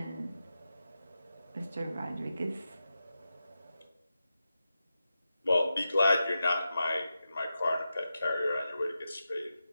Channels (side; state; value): both; inverted; correlation -0.90